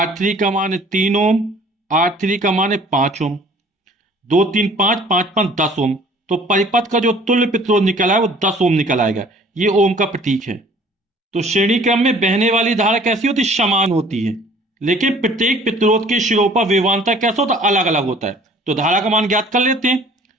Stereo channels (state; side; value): normal; both; correlation 0.53